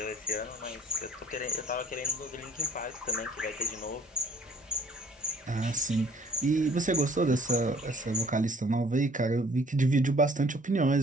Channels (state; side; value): normal; both; correlation 0.57